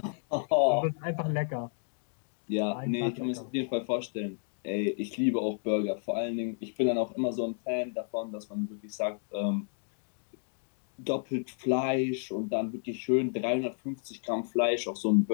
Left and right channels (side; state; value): right; silent; 57 dB below the other